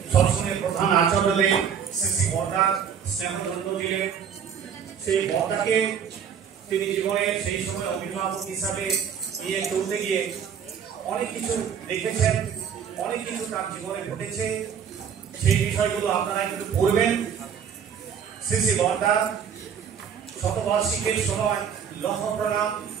সৎসঙ্গের প্রধান আচার্যদের শ্রী শ্রী বর্দা স্নেহদণ্ড দিলেন। সেই বর্দাকে তিনি জীবনে সেই সময় অভিভাবক হিসাবে নিয়ে চলতে গিয়ে অনেক কিছু দেখেছেন, অনেক কিছু তার জীবনে ঘটেছে। সেই বিষয়গুলো আপনারা একটু পড়বেন। শ্রী শ্রী বর্দা শতবার্ষিকীর সময় লক্ষ প্রণাম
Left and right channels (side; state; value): left; quieter; 7.7 dB